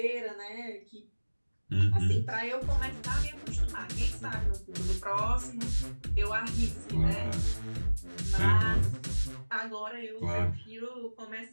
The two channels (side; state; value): both; inverted; correlation -1.00